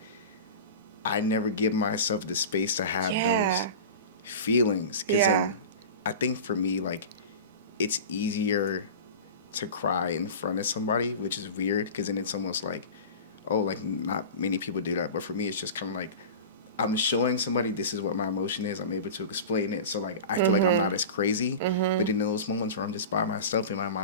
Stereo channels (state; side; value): inverted; both; correlation -0.32